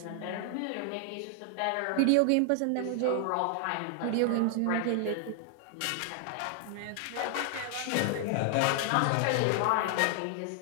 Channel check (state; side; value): different; both; correlation 0.00